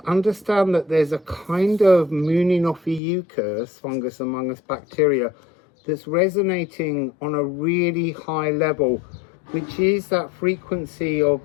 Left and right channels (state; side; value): drops out; right; at 3.0 s